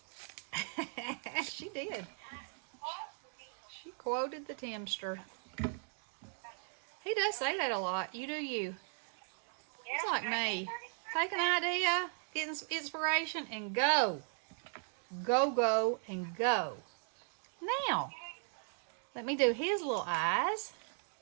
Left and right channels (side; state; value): left; silent; 53 dB below the other